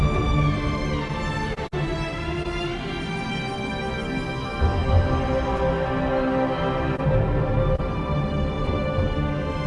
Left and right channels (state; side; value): identical; both; correlation 1.00